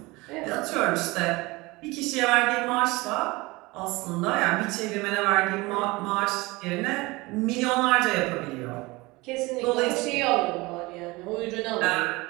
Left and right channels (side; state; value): left; quieter; 22.8 dB